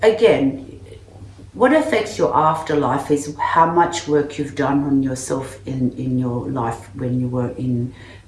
again, what affects your afterlife is how much work you've done on yourself in your life when you were in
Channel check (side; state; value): both; identical; correlation 1.00